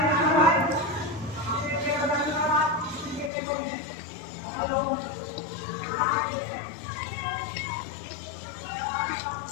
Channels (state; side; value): drops out; right; at 3.3 s